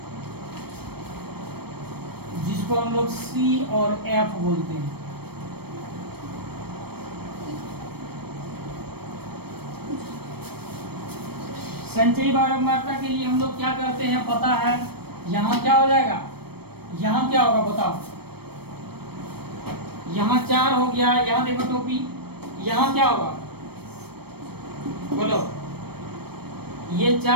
जिसको हम लोग C और F बोलते हैं। संचयी बारंबारता के लिए हम लोग क्या करते हैं पता है। यहाँ क्या हो जाएगा, यहाँ क्या होगा बताओ। यहाँ 4 हो गया, यहाँ देखो टोपी, यहाँ क्या होगा बोलो। ये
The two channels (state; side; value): late; left; 0.96 ms